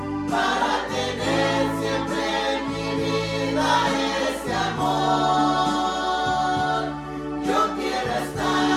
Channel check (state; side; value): identical; both; correlation 1.00